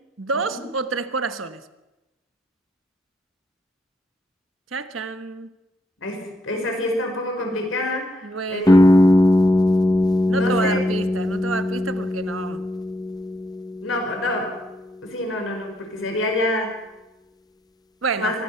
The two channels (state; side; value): normal; both; correlation 0.75